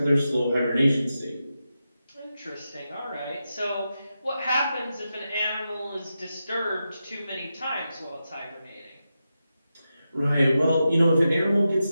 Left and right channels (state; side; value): inverted; both; correlation -0.89